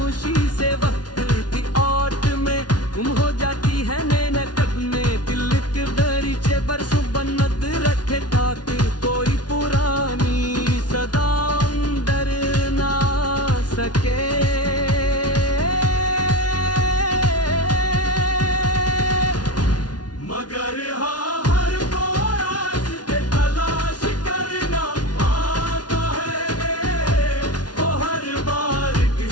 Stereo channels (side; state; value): right; late; 0.69 ms